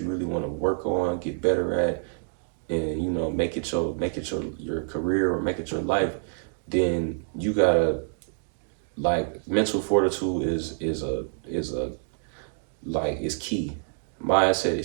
really want to work on, get better at, and make it your career, or make it your life, then you gotta, like, mental fortitude is a like, is key. Mindset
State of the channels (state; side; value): silent; left; digital silence